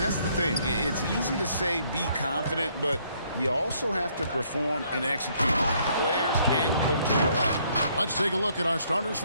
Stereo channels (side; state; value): both; inverted; correlation -0.67